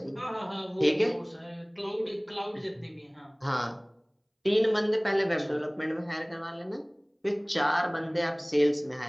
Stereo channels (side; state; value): both; identical; correlation 1.00